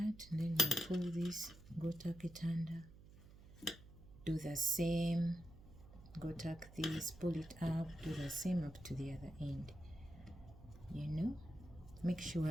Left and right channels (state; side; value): noise; right; hum, 19 dB below the sound